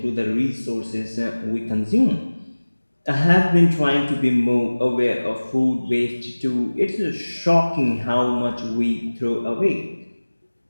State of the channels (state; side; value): inverted; both; correlation -1.00